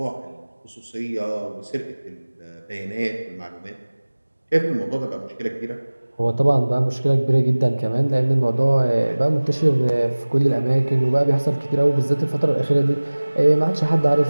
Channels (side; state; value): both; inverted; correlation -1.00